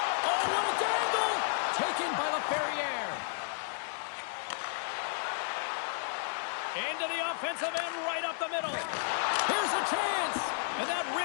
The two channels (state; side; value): silent; right; digital silence